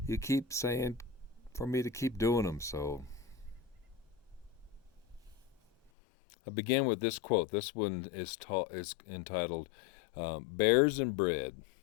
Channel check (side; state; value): right; drops out; at 5.9 s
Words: you keep saying for me to keep doing them, so I begin with this quote. This one is entitled Bears and Bread,